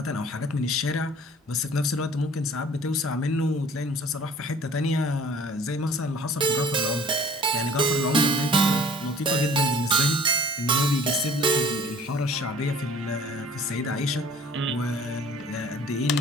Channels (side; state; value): both; normal; correlation 0.51